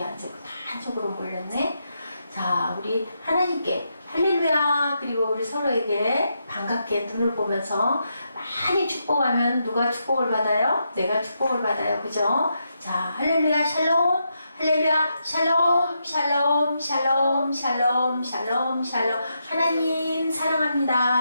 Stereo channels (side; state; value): both; inverted; correlation -0.83